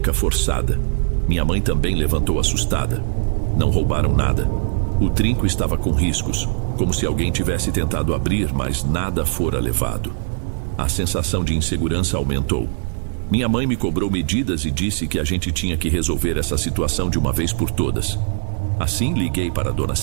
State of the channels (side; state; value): left; silent; 65 dB below the other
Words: forçada. Minha mãe também levantou assustada. Não roubaram nada. O trinco estava com riscos, como se alguém tivesse tentado abrir, mas nada fora levado. A sensação de insegurança aumentou. Minha mãe me cobrou medidas e disse que a gente tinha que resolver essa situação de uma vez por todas. Assim, liguei para a dona